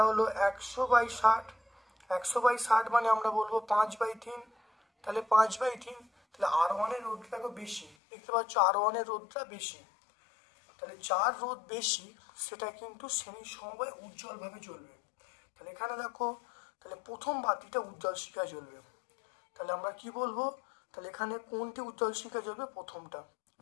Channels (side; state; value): right; drops out; at 8.0 s